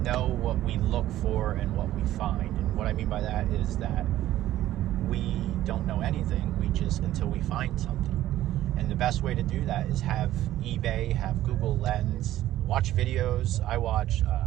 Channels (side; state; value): left; quieter; 13.9 dB